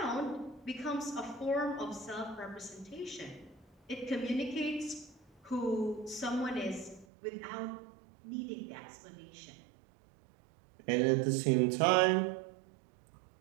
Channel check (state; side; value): drops out; left; at 7.1 s